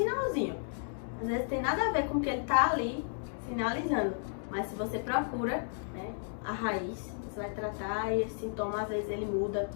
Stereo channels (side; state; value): right; silent; digital silence